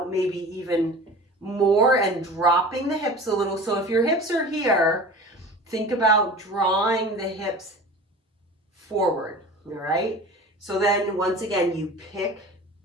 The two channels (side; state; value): both; normal; correlation 0.38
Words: maybe even more and dropping the hips a little. So if your hips are here, think about drawing the hips forward, all right? So then once again, you pick